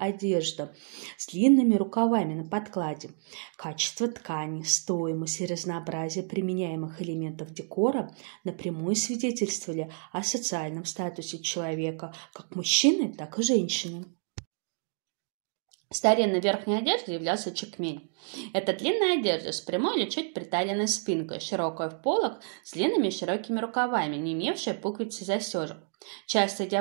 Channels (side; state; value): left; silent; 58 dB below the other